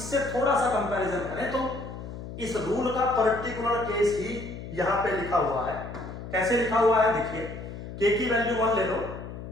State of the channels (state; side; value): noise; left; hum, 10 dB below the sound